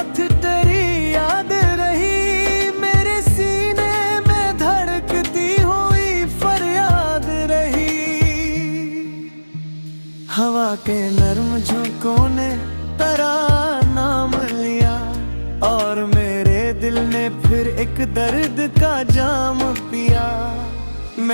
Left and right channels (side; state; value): both; inverted; correlation -1.00